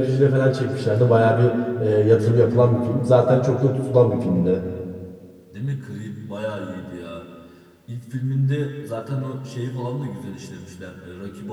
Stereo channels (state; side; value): identical; both; correlation 1.00